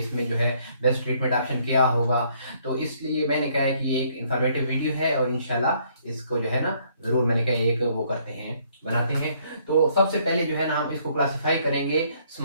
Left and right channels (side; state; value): both; inverted; correlation -0.66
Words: जो है बेस्ट ट्रीटमेंट ऑप्शन क्या होगा। तो इसलिए मैंने कहा है कि ये एक इन्फॉर्मेटिव वीडियो है और इंशाल्लाह इसको जो है ना ज़रूर मैंने कहा एक वो करते हैं, बनाते हैं। तो सबसे पहले जो है ना हम इसको क्लासीफाई करेंगे